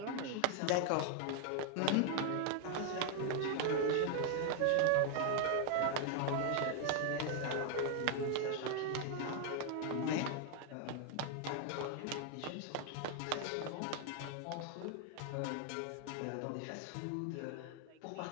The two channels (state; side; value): different; both; correlation 0.00